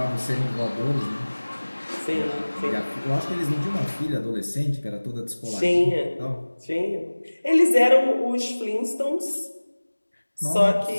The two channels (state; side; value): inverted; both; correlation -1.00